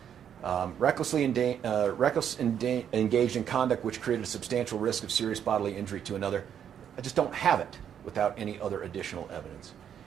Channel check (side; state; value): left; quieter; 8.9 dB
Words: Recklessly engaged in conduct which created a substantial risk of serious bodily injury to another. I just don't have it without any other additional evidence.